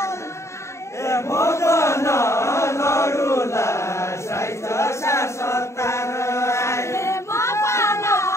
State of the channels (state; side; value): late; right; 0.14 ms